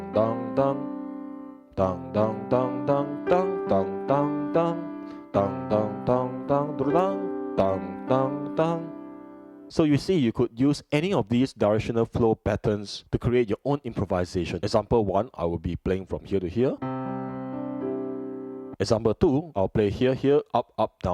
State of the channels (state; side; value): identical; both; correlation 1.00